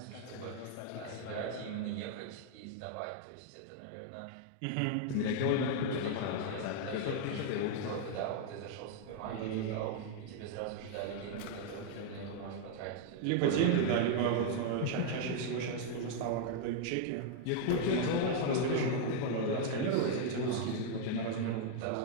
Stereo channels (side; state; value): both; different; correlation 0.00